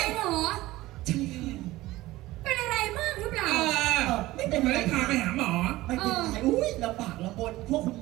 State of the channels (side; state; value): left; quieter; 17.8 dB